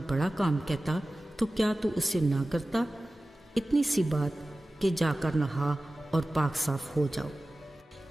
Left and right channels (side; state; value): both; normal; correlation 0.96